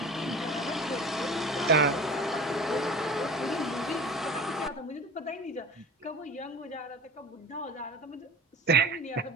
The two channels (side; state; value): both; normal; correlation 0.37